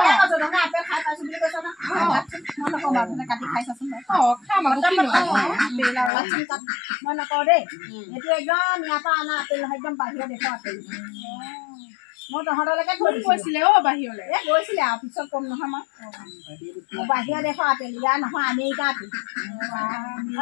আপেল খাই পাইছো বুলি কৈছ না মই নকওঁ বাৰু কাটি খাই চাচোন খাম আকৌ মই নকওঁ দেই এইটো একদম ইয়াৰ পৰা অনা আপেল নহয় একদম বাহিৰৰ দেশৰ আপেল মই তহঁতলৈকে থৈ কৈছিলে বাহিৰলৈ গৈছিলে আৰু পিছত কম নহয় মই বাহিৰৰ দেশৰ আপেল ইয়াৰ নহয় আমেৰিকা আপেল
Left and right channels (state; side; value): drops out; right; at 6.1 s